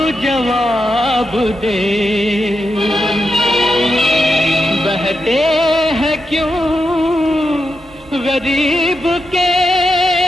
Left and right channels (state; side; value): normal; both; correlation 0.86